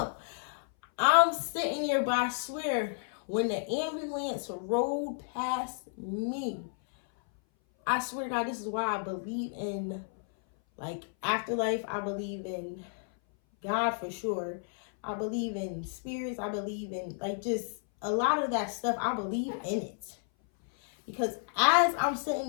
I'm sitting here, but I swear, when the ambulance rolled past me, I swear to God, this is why I believe in, like, afterlife. I believe in God for sure. I believe in spirits. I believe in, like, just a lot of that stuff. I believe in it. Because as I'm sitting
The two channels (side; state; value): right; silent; 57 dB below the other